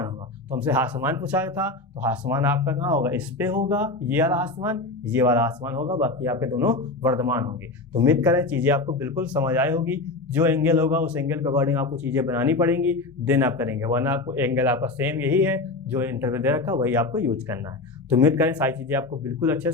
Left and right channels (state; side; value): quieter; right; 3.2 dB